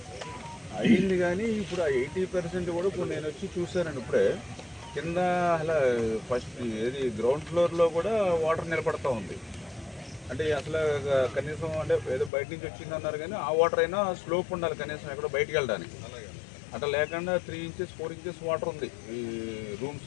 అయింది. కానీ ఇప్పుడు ఆ 80% కూడా ఇప్పుడు నేను వచ్చి చూశానండి. ఇప్పుడే కింద అలా ఫస్ట్ ఏది గ్రౌండ్ ఫ్లోర్లో కూడా వాటర్ నిలబడతా ఉంది. అంటే అసలు కనీసం అంటే ఏదో బయట నుంచి వచ్చిందన్నారు కానీ ఆ వాటర్ అయినా స్లోప్ ఉండాలి కనీసం ఎక్కడో బయటకు వెళ్ళడానికి. అట్లా లేకుండా 3 ఇంచెస్ 4 ఇంచెస్ వాటర్ ఉంది ఈ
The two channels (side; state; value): right; drops out; at 12.3 s